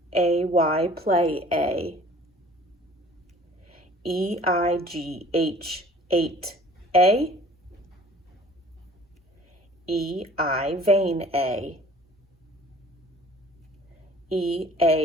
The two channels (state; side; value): normal; both; correlation 0.50